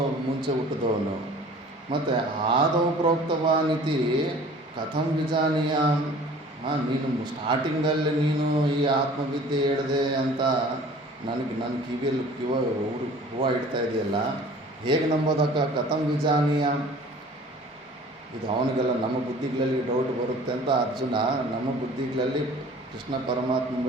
ಮುಂಚೆ ಹುಟ್ಟಿದವನು. ಮತ್ತು ಆದೌ ಪ್ರೋಕ್ತವಾನಿತಿ ಕಥಂ ವಿಜಾನೀಯಾಮ್. ನೀನು ಸ್ಟಾರ್ಟಿಂಗಲ್ಲಿ ನೀನು ಈ ಆತ್ಮವಿದ್ಯೆ ಹೇಳಿದೆ ಅಂತ ನನ್ನ ಕಿವಿಯಲ್ಲಿ ಹೂವು ಇಡ್ತಾ ಇದೆಯಲ್ಲ, ಹೇಗೆ ನಂಬೋದಕ್ಕ? ಕಥಂ ವಿಜಾನೀಯಾಮ್. ಇದು ಅವನಿಗೆಲ್ಲ ನಮ್ಮ ಬುದ್ಧಿಗಳಲ್ಲಿ ಡೌಟ್ ಬರುತ್ತೆ ಅಂತ ಅರ್ಜುನ. ನಮ್ಮ ಬುದ್ಧಿಗಳಲ್ಲಿ ಕೃಷ್ಣ ಪರಮಾತ್ಮ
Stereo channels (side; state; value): both; normal; correlation 0.47